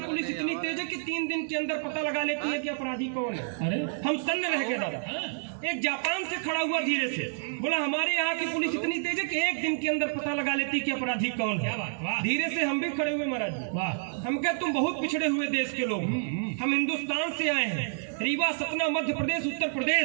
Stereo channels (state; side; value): silent; left; digital silence